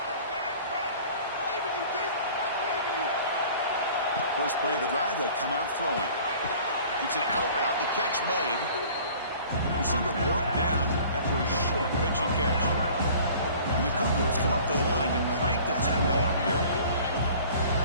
First play of the drive, they'll come out throwing. It's an out route, the catch made. Receiver brought down after a short pitch and catch. And the Cougars come up to the line to crank the tempo up here.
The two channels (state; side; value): inverted; both; correlation -0.48